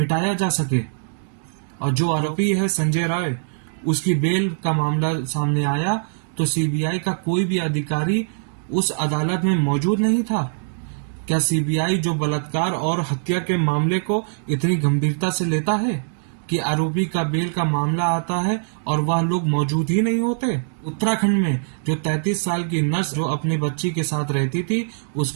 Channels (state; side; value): silent; left; digital silence